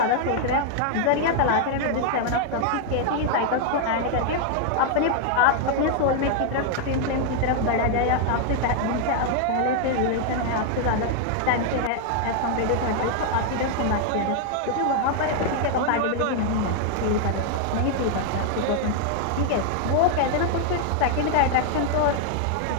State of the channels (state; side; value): different; both; correlation 0.00